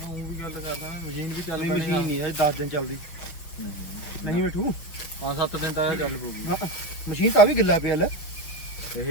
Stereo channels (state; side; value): late; right; 5.9 ms